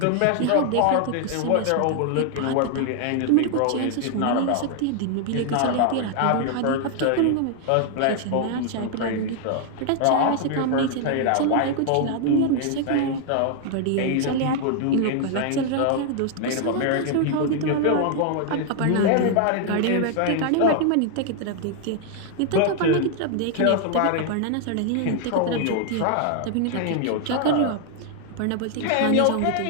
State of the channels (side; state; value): both; different; correlation 0.00